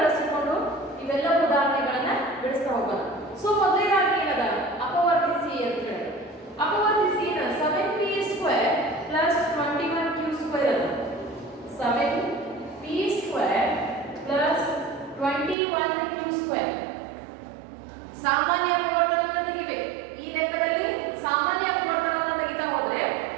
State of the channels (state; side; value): drops out; left; at 15.6 s